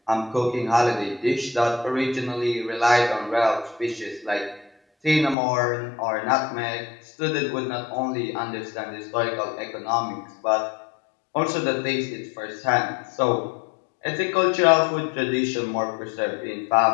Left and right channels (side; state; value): right; drops out; at 5.4 s